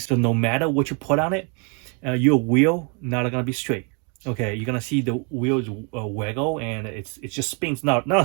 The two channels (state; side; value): quieter; left; 35.8 dB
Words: that no matter what you put on it, your wheel not gonna be straight. Okay, you're gonna see the wheels waggle, and it just spins,